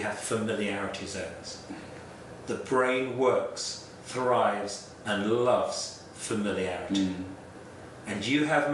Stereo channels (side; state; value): both; identical; correlation 1.00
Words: familiarity zones. The brain works, thrives, and loves familiarity. And you have